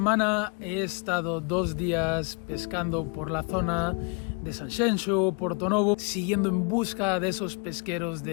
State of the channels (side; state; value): right; quieter; 35.0 dB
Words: he estado 2 días pescando por la zona de Sanxenxo, Portonovo, siguiendo en busca de esos pesqueros